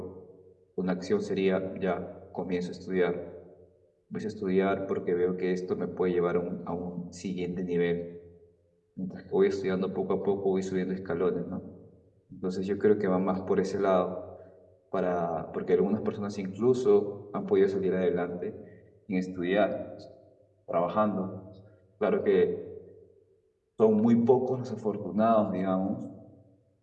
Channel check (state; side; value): identical; both; correlation 1.00